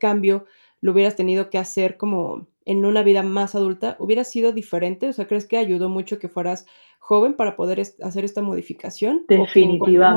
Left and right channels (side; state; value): both; inverted; correlation -1.00